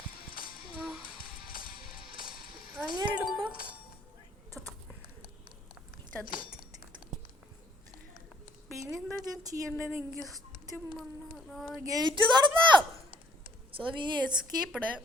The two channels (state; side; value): normal; both; correlation 0.61